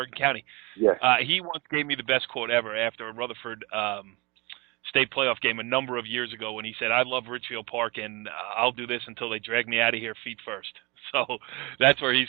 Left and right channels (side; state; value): left; quieter; 26.4 dB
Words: County. Yes. He once gave me the best quote ever after a Rutherford state playoff game a number of years ago when he said, "I love Ridgefield Park and I'll do this until they drag me out of here feet first." So that's where he's